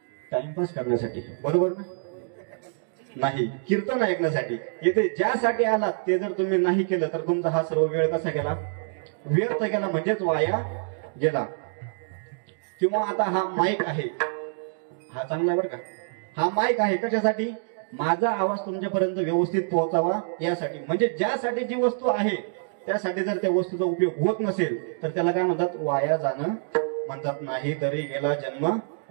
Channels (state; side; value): silent; left; digital silence